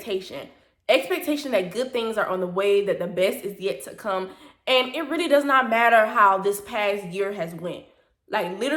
Expectation that good things are on the way, that the best is yet to come. And it really does not matter how this past year has went. Like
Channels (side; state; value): both; identical; correlation 1.00